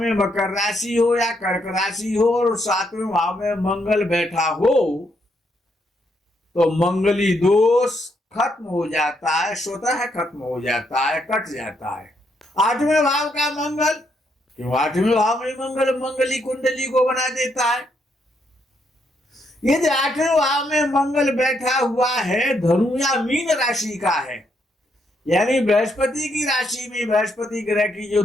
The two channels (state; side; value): normal; both; correlation 0.76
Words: मकर राशि हो या कर्क राशि हो और 7वें भाव में मंगल बैठा हो, तो मंगली दोष खत्म हो जाता है, स्वतः खत्म हो जाता है, कट जाता है। 8वें भाव का मंगल, क्यों 8वें भाव में मंगल मंगली कुंडली को बना देता है। यदि 8वें भाव में मंगल बैठा हुआ है, धनु या मीन राशि का है, यानी बृहस्पति की राशि में, बृहस्पति ग्रह की जो